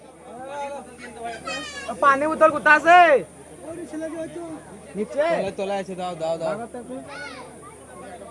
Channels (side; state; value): both; identical; correlation 1.00